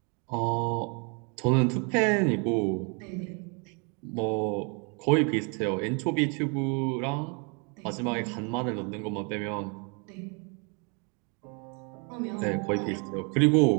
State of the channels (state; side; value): quieter; left; 34.7 dB